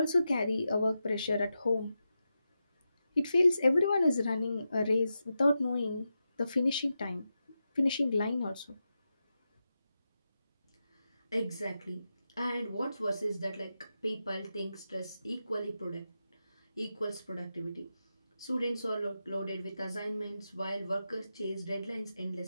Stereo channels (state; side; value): inverted; both; correlation -0.89